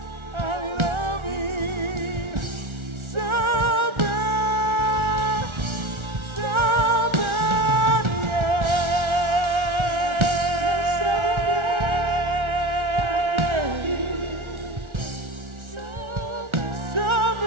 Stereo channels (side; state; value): left; late; 1.4 ms